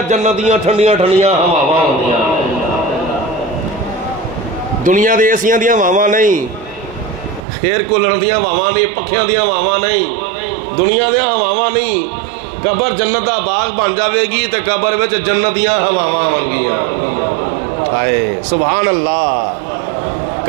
جنتیاں ٹھنڈیاں ٹھنڈیاں ہواواں ہوندیاں، دنیا دے ایسیاں دیاں ہواواں نہیں، ایئر کولر دیاں ہواواں نہیں، پکھیاں دیاں ہواواں نہیں، دنیا دیاں ہواواں نہیں، قبر جنت دا باغ بن جاوے گی تے قبر وچ جنتیاں ہواواں ہون گیاں، ہائے سبحان اللہ،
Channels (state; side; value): drops out; left; at 7.4 s